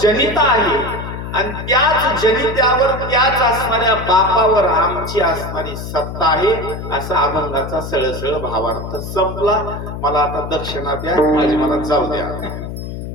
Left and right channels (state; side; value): noise; left; hum, 8 dB below the sound